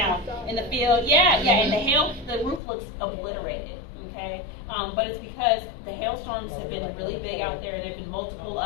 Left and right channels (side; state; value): right; drops out; at 2.6 s